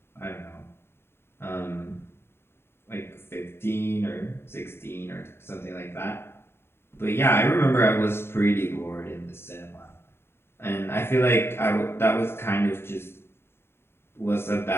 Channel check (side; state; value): right; late; 0.11 ms